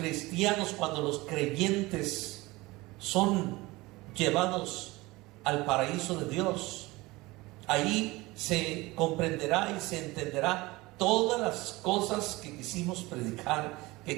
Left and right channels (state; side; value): quieter; left; 21.3 dB